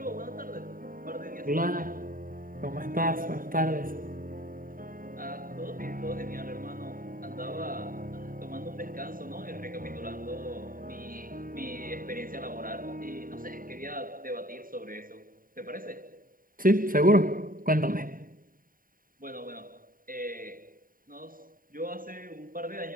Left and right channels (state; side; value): late; left; 0.41 ms